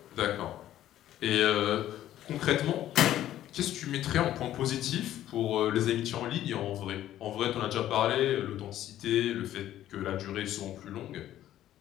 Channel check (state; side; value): quieter; right; 12.7 dB